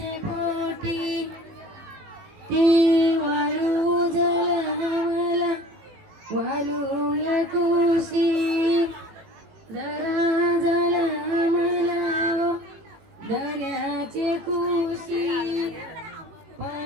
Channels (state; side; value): late; left; 18 ms